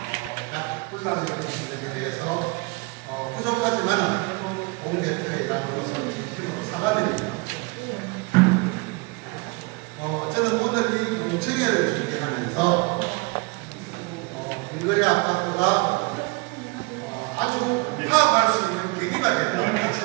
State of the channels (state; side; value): quieter; left; 27.3 dB